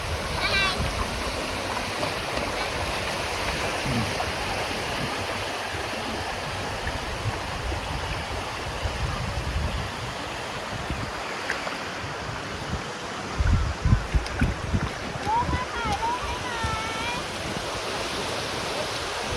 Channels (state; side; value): identical; both; correlation 1.00